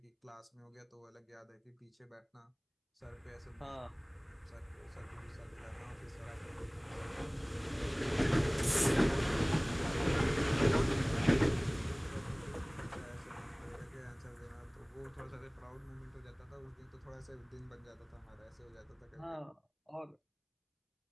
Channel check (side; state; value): both; identical; correlation 1.00